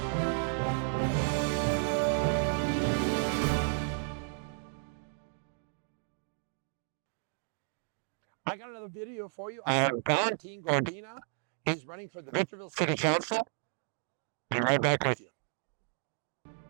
I got another video for you. I have Valentin Godina. He's running for the Victorville City Council. Be right back with you.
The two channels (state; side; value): silent; left; digital silence